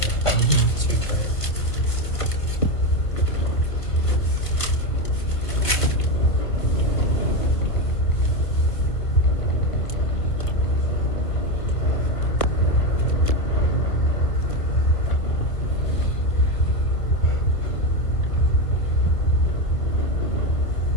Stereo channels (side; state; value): right; late; 1.4 ms